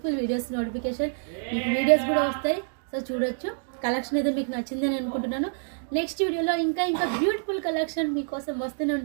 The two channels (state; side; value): silent; left; digital silence